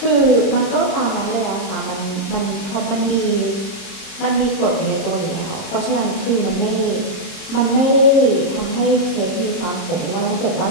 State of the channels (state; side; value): late; right; 31 ms